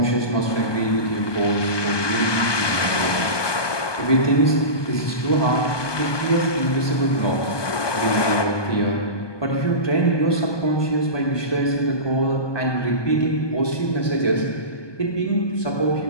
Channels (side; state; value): right; late; 1.2 ms